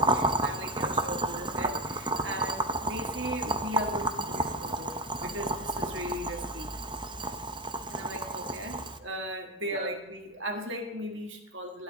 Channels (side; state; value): both; normal; correlation 0.11